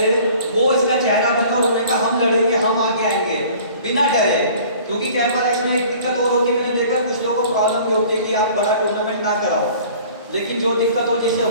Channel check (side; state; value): both; inverted; correlation -0.48